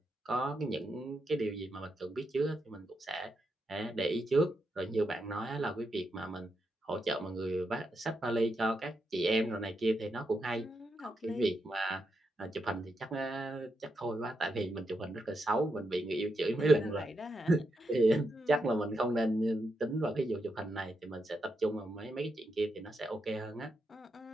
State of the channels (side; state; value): both; normal; correlation 0.83